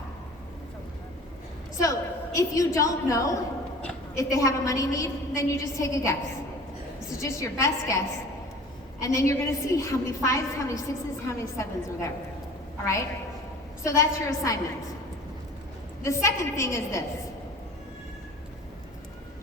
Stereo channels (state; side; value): normal; both; correlation 0.42